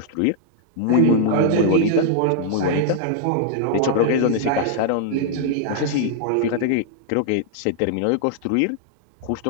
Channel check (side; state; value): both; different; correlation -0.01